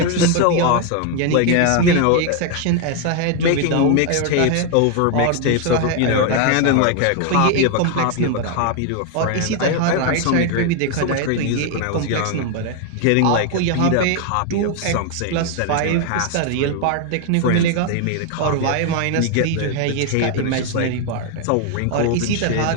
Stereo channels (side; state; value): both; different; correlation 0.01